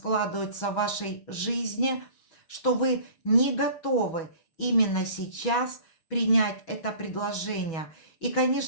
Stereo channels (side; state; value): right; late; 6.2 ms